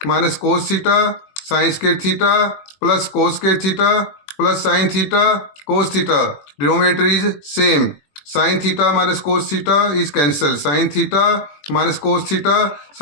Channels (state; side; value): late; right; 21 ms